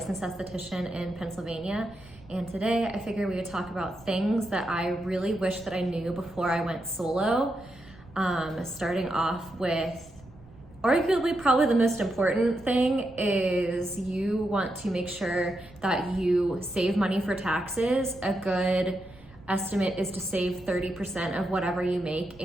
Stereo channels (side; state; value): right; noise; rumble, 23 dB below the sound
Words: esthetician in Pennsylvania, and today I figured we would talk about things that I really wish that I knew before I went solo. Starting off with arguably probably the most important thing is you want to make sure that you save money for taxes. A good estimate is to save 30% of whatever you make